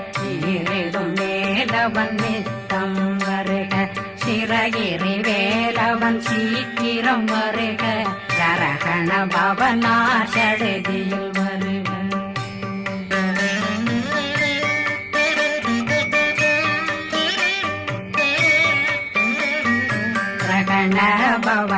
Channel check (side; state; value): both; identical; correlation 1.00